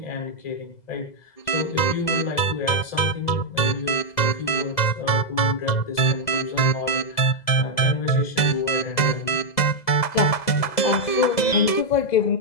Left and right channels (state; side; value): late; right; 2.0 ms